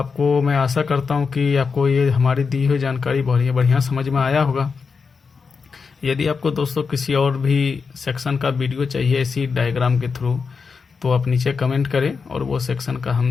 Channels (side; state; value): right; quieter; 5.2 dB